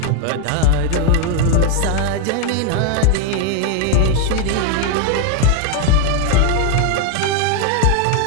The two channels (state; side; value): different; both; correlation 0.01